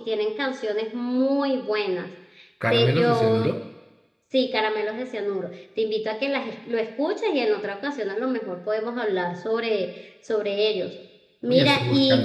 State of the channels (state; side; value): identical; both; correlation 1.00